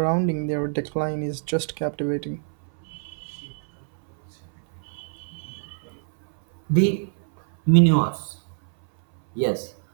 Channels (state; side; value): silent; left; 61 dB below the other